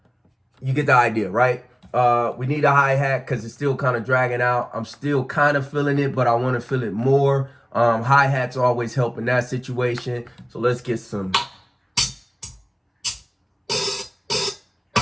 you get the idea, right? We need a hi-hat because it's still kind of dragging out. I'm still kind of feeling it, but I want to feel it more. Hi-hats always help in that situation. So let's get some.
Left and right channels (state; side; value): identical; both; correlation 1.00